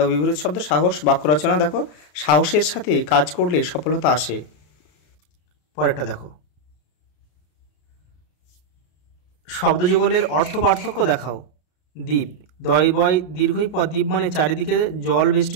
বিপরীত শব্দ সাহস। বাক্য রচনা: দেখো সাহসের সাথে কাজ করলে সফলতা আসে। পরেরটা দেখো, শব্দযুগলের অর্থ পার্থক্য দেখাও। দ্বীপ, দয় বয় দীর্ঘই পর দ্বীপ মানে চারিদিকে জল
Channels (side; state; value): right; late; 34 ms